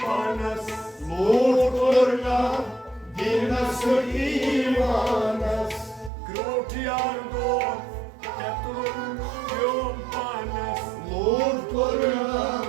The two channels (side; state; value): left; drops out; at 6.1 s